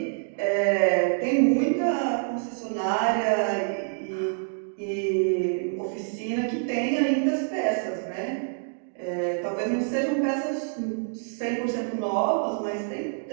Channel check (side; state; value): left; silent; digital silence